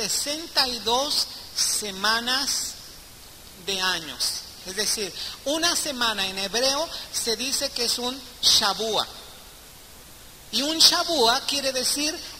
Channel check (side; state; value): both; identical; correlation 1.00